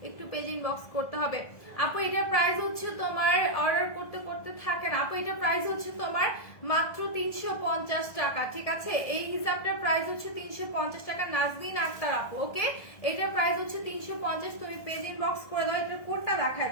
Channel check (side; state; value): right; late; 1.7 ms